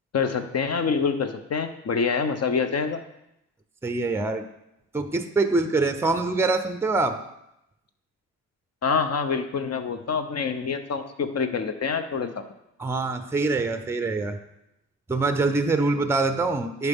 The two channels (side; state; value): both; normal; correlation 0.33